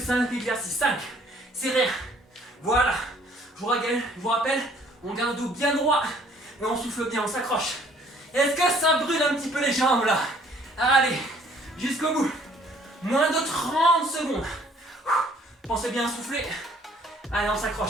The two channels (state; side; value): normal; both; correlation 0.59